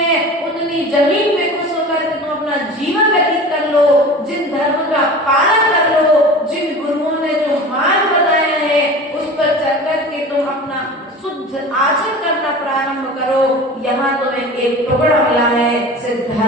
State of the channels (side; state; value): both; normal; correlation 0.36